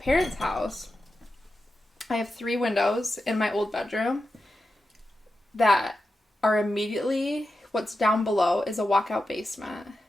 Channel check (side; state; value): both; normal; correlation 0.90